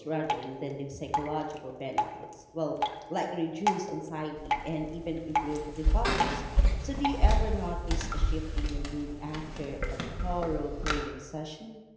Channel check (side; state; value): both; identical; correlation 1.00